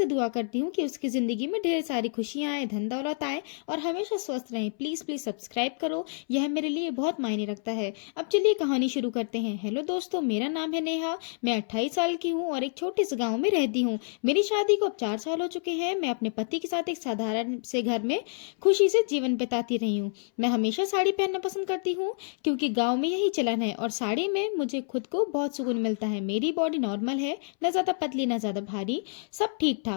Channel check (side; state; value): right; silent; 59 dB below the other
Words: दुआ करती हूँ कि उसकी ज़िंदगी में ढेर सारी खुशियाँ आए, धन दौलत आए और हमेशा स्वस्थ रहें। प्लीज़ प्लीज़ सब्सक्राइब करो, यह मेरे लिए बहुत मायने रखता है। अब चलिए कहानी शुरू करते हैं। हेलो दोस्तों, मेरा नाम है नेहा। मैं 28 साल की हूँ और एक छोटे से गाँव में रहती हूँ। मेरी शादी को अब 4 साल हो चुके हैं। मैं अपने पति के साथ एक साधारण से घर में खुशी से जीवन बिताती रही हूँ। मैं हमेशा साड़ी पहनना पसंद करती हूँ क्योंकि गांव में यही चलन है और साड़ी में मुझे खुद को बहुत सुकून मिलता है। मेरी बॉडी नॉर्मल है, न ज़्यादा पतली न ज़्यादा भारी, सब ठीक